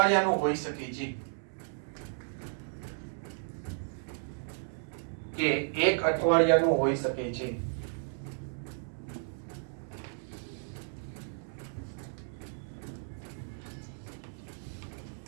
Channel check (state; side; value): silent; left; 55 dB below the other